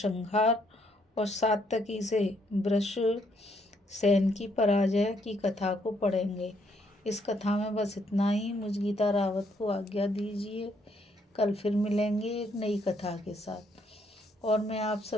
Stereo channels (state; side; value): normal; both; correlation 0.71